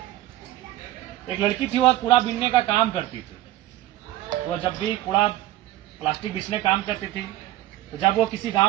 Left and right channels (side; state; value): left; quieter; 15.3 dB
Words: लड़की थी, वह कूड़ा बीनने का काम करती थी। वह जब भी कूड़ा प्लास्टिक बीसने काम करती थी, तो जब वो किसी